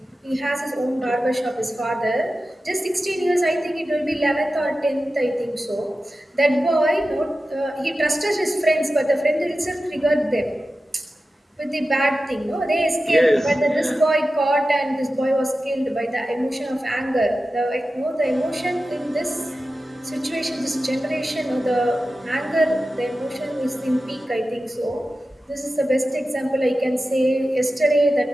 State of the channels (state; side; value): normal; both; correlation 0.93